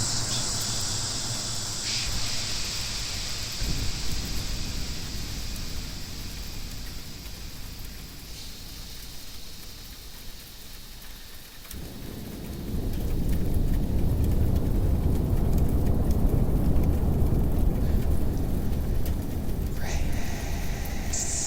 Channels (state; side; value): identical; both; correlation 1.00